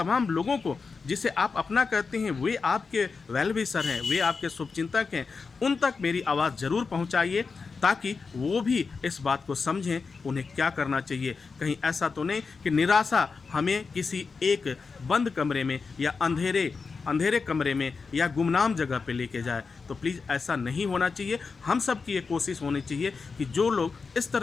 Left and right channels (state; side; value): quieter; right; 4.8 dB